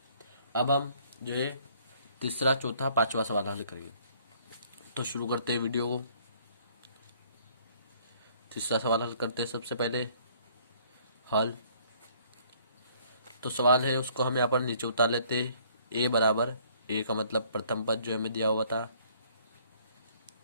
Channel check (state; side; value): inverted; both; correlation -0.61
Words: अब हम जो है तीसरा, चौथा, पांचवा सवाल हल करेंगे। तो शुरू करते हैं वीडियो को। तीसरा सवाल हल करते हैं। सबसे पहले हल तो सवाल है, उसको हम यहाँ पर नीचे उतार लेते हैं। ए बराबर, ए का मतलब प्रथम पद जो हमें दिया हुआ था,